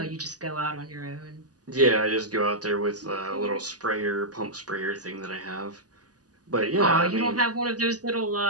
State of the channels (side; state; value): left; late; 0.68 ms